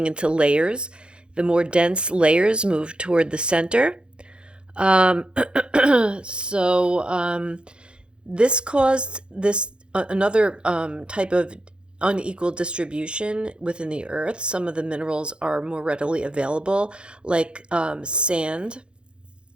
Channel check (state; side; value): late; left; 0.054 ms